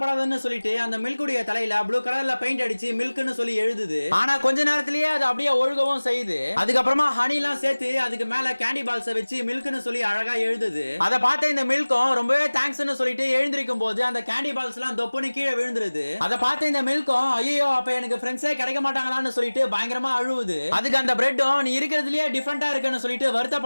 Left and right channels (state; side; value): inverted; both; correlation -1.00